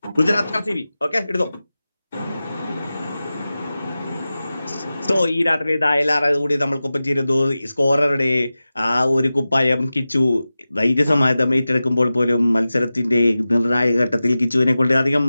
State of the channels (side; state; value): both; inverted; correlation -0.95